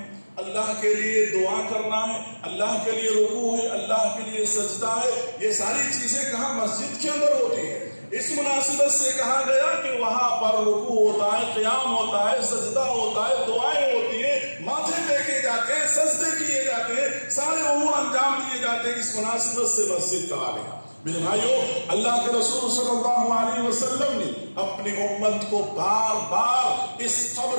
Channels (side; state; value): both; inverted; correlation -1.00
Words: اللہ کے لیے دعا کرنا ہے، اللہ کے لیے رکوع ہے، اللہ کے لیے سجدہ ہے، یہ ساری چیزیں کہاں؟ مسجد کے اندر ہوتی ہیں. اس مناسبت سے کہا گیا کہ وہاں پر رکوع ہوتا ہے، قیام ہوتا ہے، سجدہ ہوتا ہے، دعائیں ہوتی ہیں، ماتھے ٹیکے جاتے ہیں، سجدے کیے جاتے ہیں، سارے امور انجام دیے جاتے ہیں. اس مناسبت سے مسجد کہا گیا. میرے بھائیو، اللہ کے رسول صلی اللہ علیہ وسلم نے اپنی امت کو بار بار اس